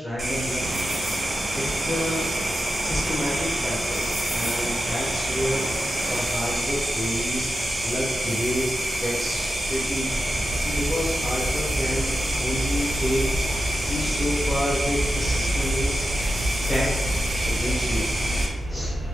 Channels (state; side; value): normal; both; correlation 0.90